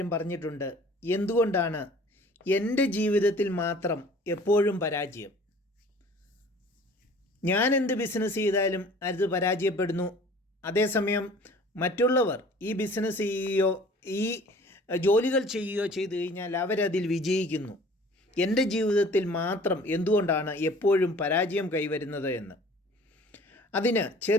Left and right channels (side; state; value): both; normal; correlation 0.49